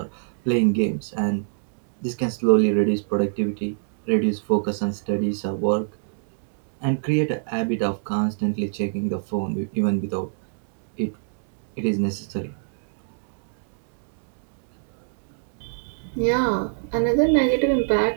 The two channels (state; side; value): silent; left; digital silence